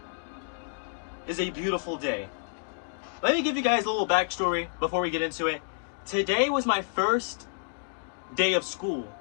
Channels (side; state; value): right; silent; digital silence